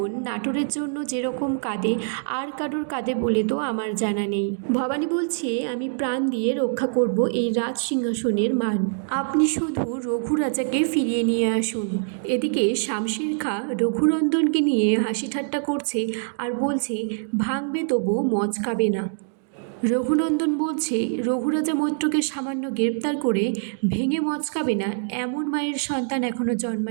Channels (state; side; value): silent; left; digital silence